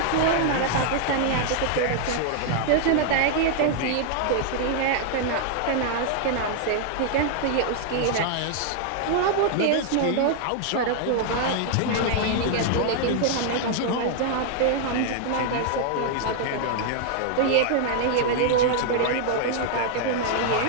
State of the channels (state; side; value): different; both; correlation 0.00